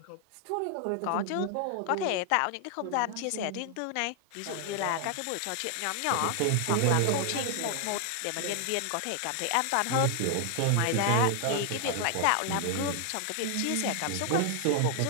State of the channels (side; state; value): both; different; correlation 0.00